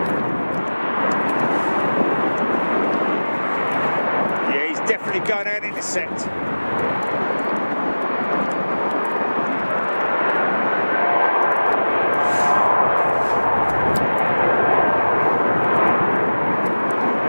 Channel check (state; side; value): inverted; both; correlation -1.00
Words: Definitely going out in the set.